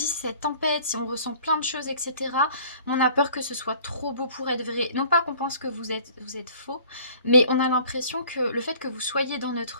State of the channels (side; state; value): both; inverted; correlation -0.52